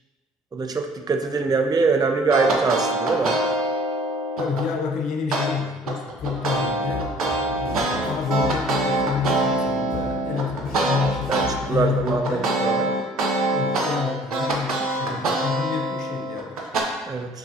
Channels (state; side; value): normal; both; correlation 0.54